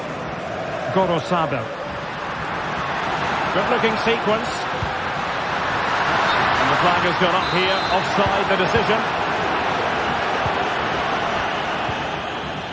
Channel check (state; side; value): identical; both; correlation 1.00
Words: Gorosado. Good-looking sequence. And the flag has gone up here. Offside the decision.